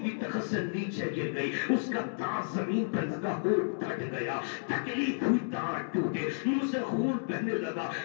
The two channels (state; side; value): silent; right; 57 dB below the other